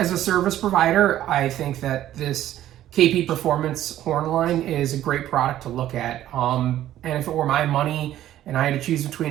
a service provider, I think that this KP Performance horn line is a great product to look at. And if it were my money and I had to choose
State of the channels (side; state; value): left; quieter; 12.7 dB